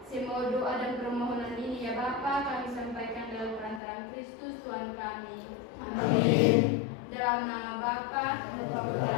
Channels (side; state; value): right; drops out; at 3.8 s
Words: Semua doa dan permohonan ini ya Bapa kami sampaikan dalam perantaraan Kristus Tuhan kami. Amin. Dalam nama Bapa,